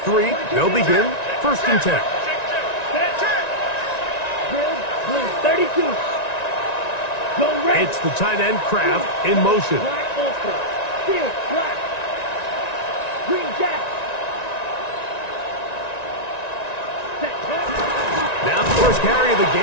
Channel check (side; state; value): right; late; 1.9 ms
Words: they'll begin 1st and 10. 32. Go red. It's the tight end Kraft in motion. Black Ulster. Here, black. Green Jack. first carry of the